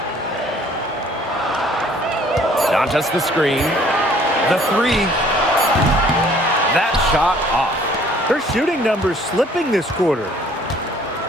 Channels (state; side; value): normal; both; correlation 0.57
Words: Dantas the screen. The three. That shot off. Her shooting numbers slipping this quarter.